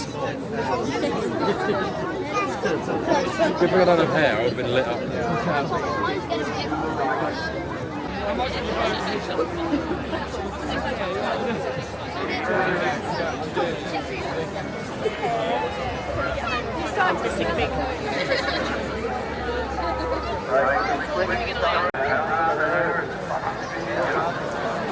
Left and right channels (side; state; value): both; identical; correlation 1.00